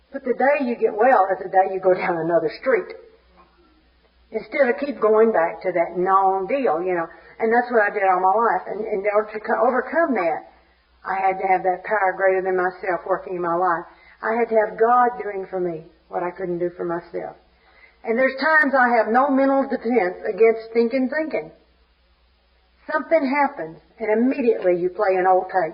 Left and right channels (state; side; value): identical; both; correlation 1.00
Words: But the day you get well is the day you go down another street. Instead of keep going back to that known deal, you know. And that's what I did all my life. And in order to overcome that, I had to have that power greater than myself working in my life. I had to have God doing for me what I couldn't do for myself. And there's times I have no mental defense against thinking. Something happens, and immediately you play an old